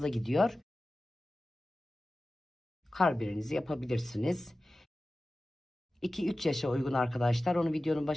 gidiyor. Karbirenizi yapabilirsiniz. 2-3 yaşa uygun arkadaşlar. Onu videonun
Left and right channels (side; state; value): both; normal; correlation 0.95